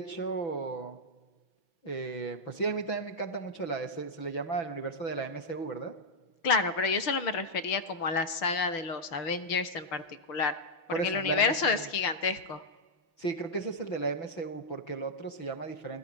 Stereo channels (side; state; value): right; late; 6.0 ms